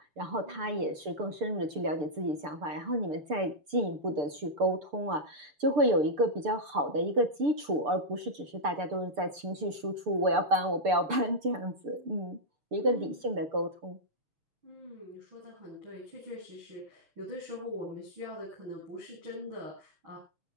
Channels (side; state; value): left; late; 6.8 ms